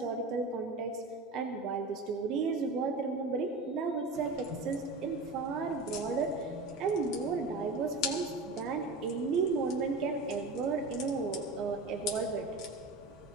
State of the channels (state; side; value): quieter; left; 3.3 dB